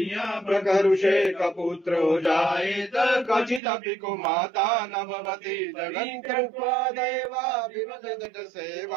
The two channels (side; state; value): left; drops out; at 3.6 s